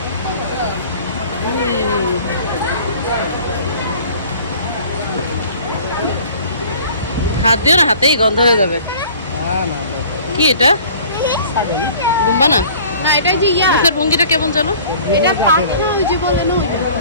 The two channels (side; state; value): both; inverted; correlation -0.48